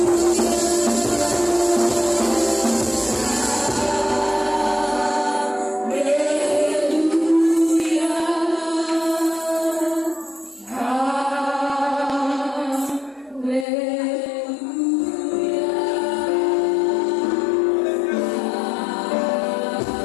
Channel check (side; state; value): right; drops out; at 13.7 s